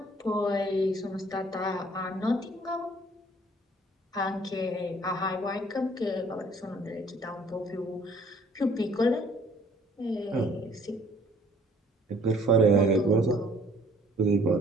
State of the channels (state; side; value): normal; both; correlation 0.57